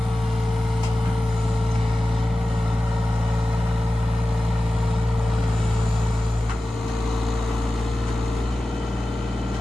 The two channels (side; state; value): both; normal; correlation 0.95